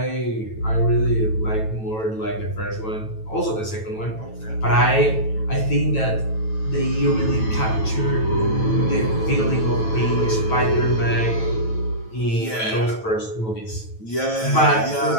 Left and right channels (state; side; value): late; right; 9.1 ms